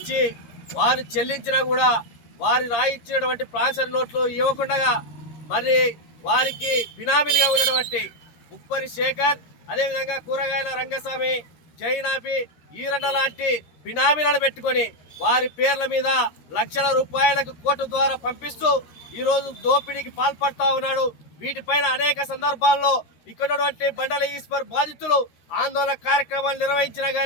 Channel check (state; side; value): late; right; 13 ms